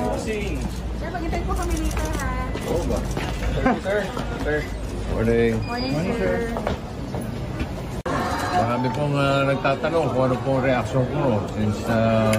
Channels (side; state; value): both; identical; correlation 1.00